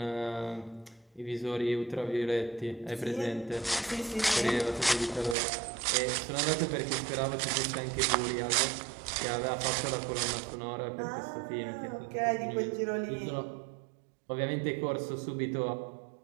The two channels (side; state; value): left; drops out; at 5.4 s